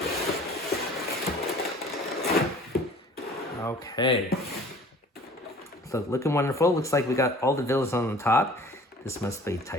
Okay, so looking wonderful. Looks like we got all the villains on the top. This must be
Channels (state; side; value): normal; both; correlation 0.47